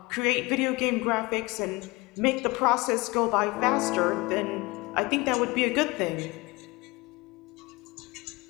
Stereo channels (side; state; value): right; quieter; 23.4 dB